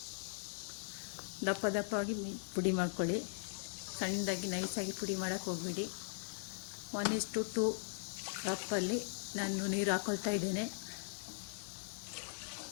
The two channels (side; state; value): right; silent; digital silence